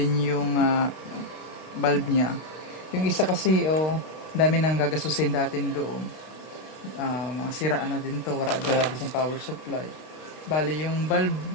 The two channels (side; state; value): right; late; 32 ms